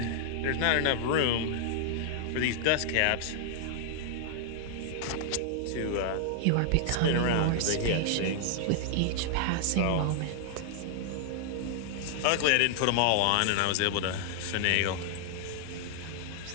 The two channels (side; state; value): both; different; correlation -0.01